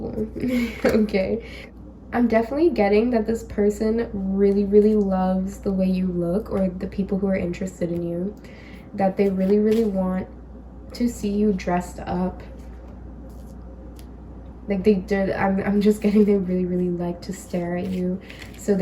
Okay. I'm definitely getting that this person really, really loves the way you look, or the people who are interested in you, that they really, really want to see you dressed up. Like they did, I'm just getting they really, really like to stare at you. So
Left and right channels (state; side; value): identical; both; correlation 1.00